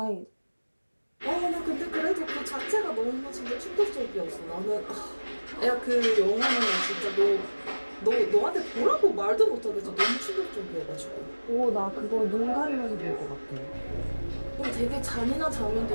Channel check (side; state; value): both; inverted; correlation -1.00